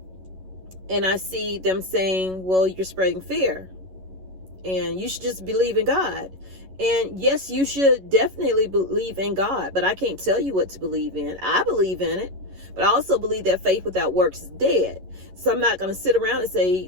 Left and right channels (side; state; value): left; late; 11 ms